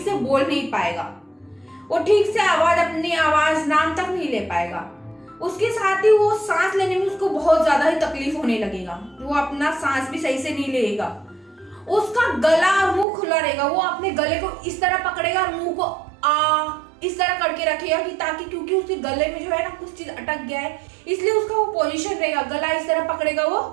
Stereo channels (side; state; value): left; drops out; at 13.1 s